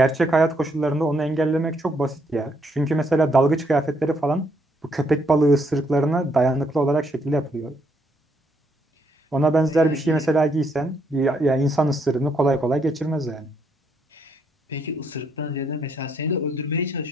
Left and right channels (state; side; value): normal; both; correlation 0.72